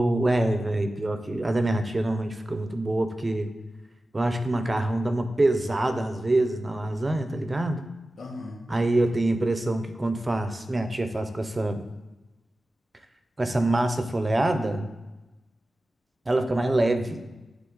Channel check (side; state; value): both; normal; correlation 0.95